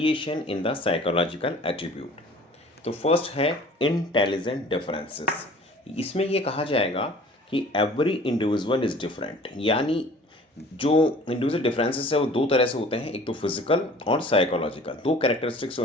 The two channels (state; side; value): normal; both; correlation 0.47